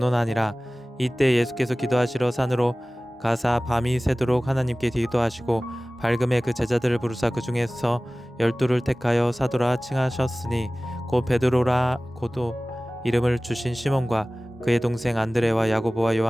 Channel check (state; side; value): normal; both; correlation 0.98